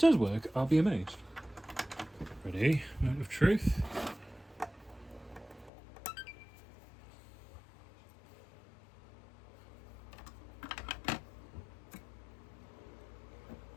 work, I'll be amazed. Ready? Moment of truth.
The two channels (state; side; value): drops out; right; at 5.7 s